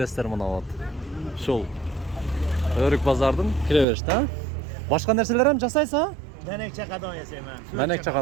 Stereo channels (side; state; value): left; drops out; at 3.9 s